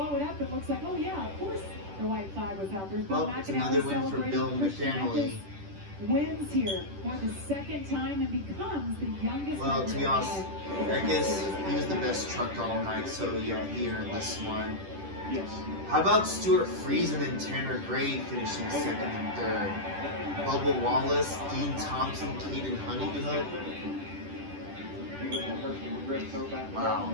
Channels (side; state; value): left; late; 10 ms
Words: it up. It looks like, oh yeah, of course the white flag was out. There's Bill Well, it's McAnally another win for celebrating. Bill Christian McAnally. Eckes wins here for the second time and becomes the youngest. Well, to be driver honest, Eckes, he was the best truck all night, so yeah, he earned this one. Yes. How about Stuart Friesen and Tanner Gray finishing second and third? Bubba Wallace, Dean Thompson, Caden Honeycutt. Beautiful Hershel McGriff throwback. Wow.